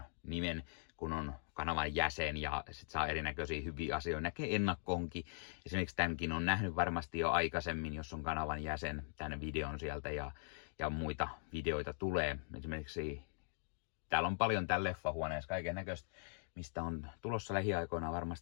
nimen, kun on kanavan jäsen ja sit saa erinäköisiä hyviä asioita. Näkee ennakkoonkin. Esimerkiksi tämänkin on nähnyt varmasti jo aikaisemmin, jos on kanavan jäsen, tämän videon sieltä ja muita videoita tulee. Esimerkiksi täällä on paljon täällä leffahuoneessa kaiken näköistä, mistä on tulossa lähiaikoina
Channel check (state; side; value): silent; right; digital silence